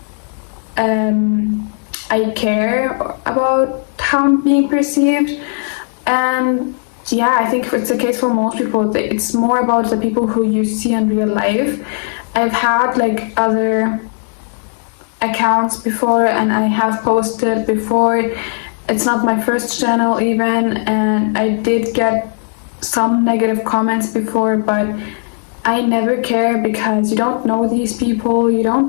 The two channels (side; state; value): right; silent; 62 dB below the other